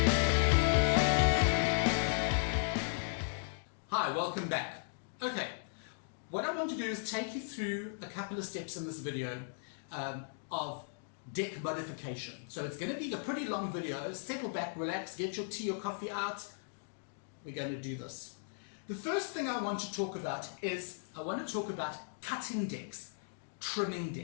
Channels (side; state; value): right; silent; digital silence